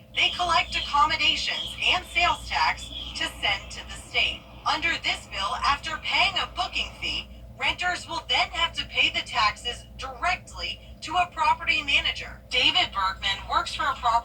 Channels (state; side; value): identical; both; correlation 1.00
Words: they collect accommodations and sales tax to send to the state. Under this bill, after paying a booking fee, renters will then have to pay the taxes directly to a property manager. David Bergman works for a